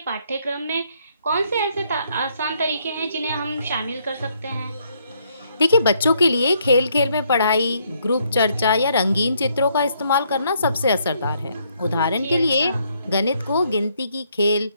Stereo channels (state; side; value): inverted; both; correlation -0.71